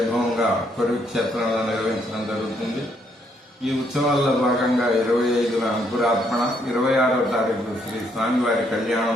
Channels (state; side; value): normal; both; correlation 0.72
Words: కొరి క్షేత్రంలో నిర్వహించడం జరుగుతుంది. ఈ ఉత్సవాల్లో భాగంగా 25న అంకురార్పణ, 26వ తారీఖు శ్రీ స్వామివారి